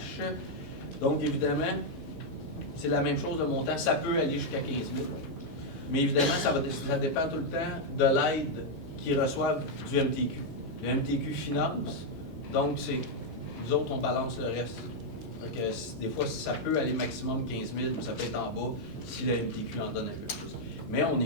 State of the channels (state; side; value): normal; both; correlation -0.01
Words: Donc, évidemment, c'est la même chose, le montant, ça peut aller jusqu'à 15 000. Mais évidemment, ça dépend tout le temps de l'aide qu'ils reçoivent du MTQ. Le MTQ finance, donc nous autres, on balance le reste. Donc, des fois, ça peut aller maximum 15 000, mais ça peut être en bas si le MTQ en donne un peu plus. Mais on